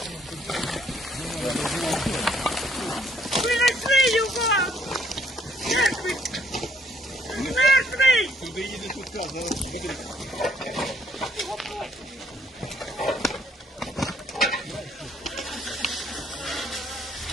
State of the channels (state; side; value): normal; both; correlation 0.66